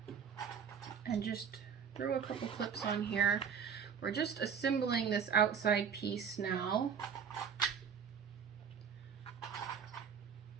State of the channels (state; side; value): quieter; left; 7.1 dB